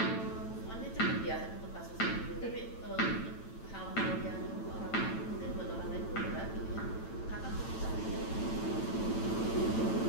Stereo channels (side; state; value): right; late; 9.0 ms